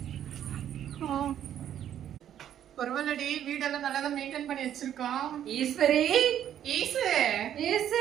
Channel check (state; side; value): quieter; left; 10.4 dB